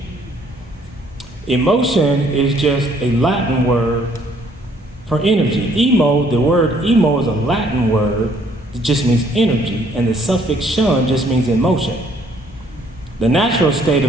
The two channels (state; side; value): normal; both; correlation 0.63